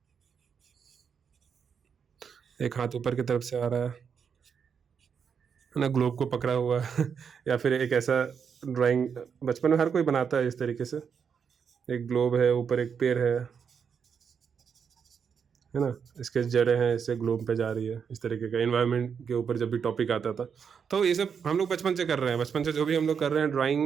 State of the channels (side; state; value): left; quieter; 6.8 dB